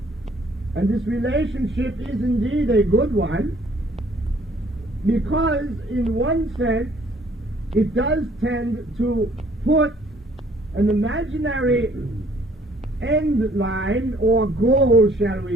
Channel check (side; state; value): both; normal; correlation 0.60